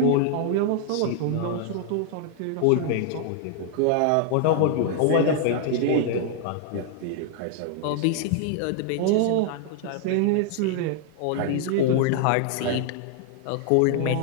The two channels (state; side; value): different; both; correlation 0.00